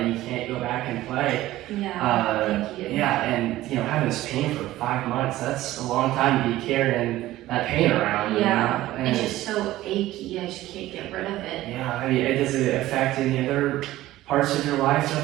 you can't go back and play. Yeah, thank you. Yeah, and having this pain for 5 months, that's a long time to be carrying that pain around. Yeah, and it's just so achy, I just can't get rid of it. Yeah, I mean, does it affect any other parts of your life at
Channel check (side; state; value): left; quieter; 15.7 dB